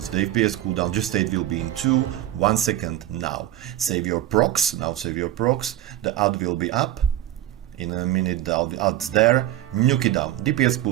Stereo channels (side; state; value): left; quieter; 13.3 dB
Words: the FPS cooldown just state will be in 1 second now. Save your procs, now save your procs, the ad will be up, in a minute the ad's there, nuke it down, DPS